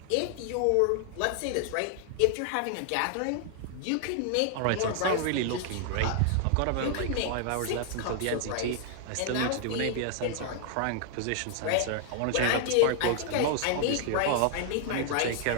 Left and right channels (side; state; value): both; different; correlation 0.00